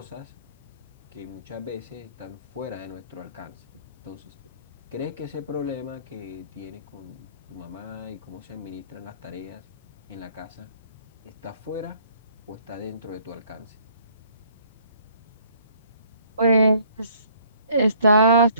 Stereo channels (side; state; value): both; inverted; correlation -0.60